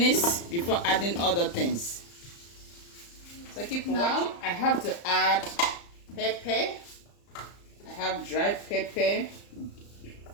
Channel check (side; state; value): right; late; 35 ms